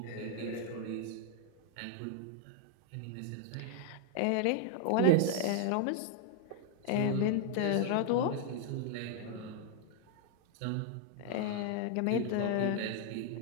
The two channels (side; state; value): both; different; correlation 0.00